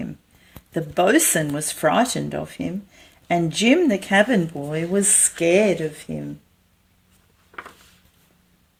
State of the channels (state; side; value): identical; both; correlation 1.00